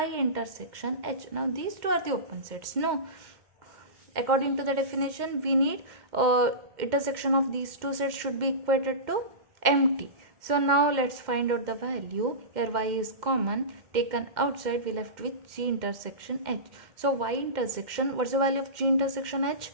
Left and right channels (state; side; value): late; left; 2.1 ms